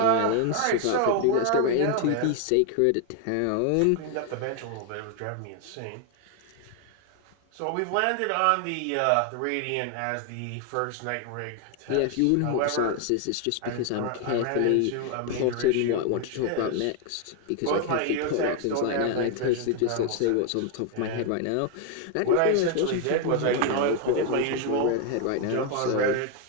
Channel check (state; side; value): different; both; correlation 0.01